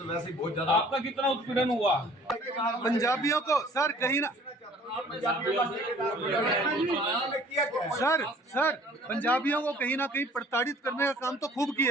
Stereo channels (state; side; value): normal; both; correlation 0.53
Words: वैसे ही बहुत ज्यादा। आपका कितना उत्पीड़न हुआ? पंजाबियों को सर कहीं ना सर पंजाबियों को कहीं ना कहीं प्रताड़ित करने का काम तो खूब